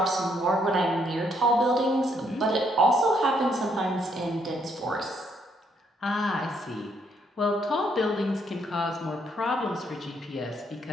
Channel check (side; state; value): both; normal; correlation 0.72